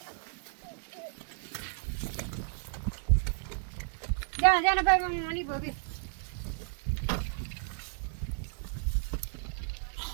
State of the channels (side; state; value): left; silent; digital silence